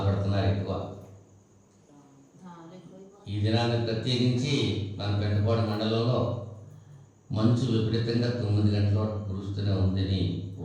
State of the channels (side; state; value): both; identical; correlation 1.00